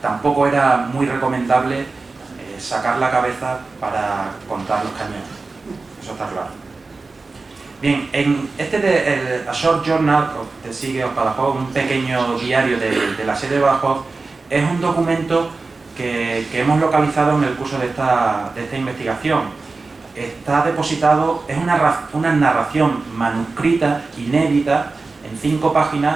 Tampoco era muy recomendable sacar la cabeza para contar los cañones. Eso está claro. Bien, en A Short Journal de Sigue of Badajoz, un pequeño diario de la sede de Badajoz, es un documento que hemos localizado en el curso de esta investigación. Está depositado, es una narración manuscrita, inédita, en 5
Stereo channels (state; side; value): quieter; left; 3.8 dB